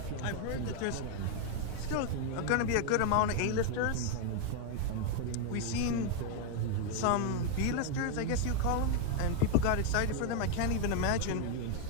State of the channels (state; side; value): different; both; correlation 0.01